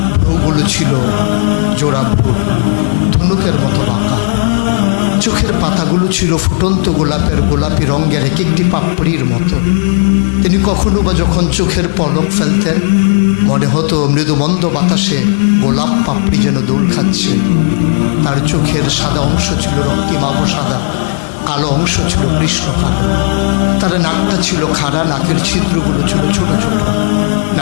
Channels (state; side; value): silent; right; 59 dB below the other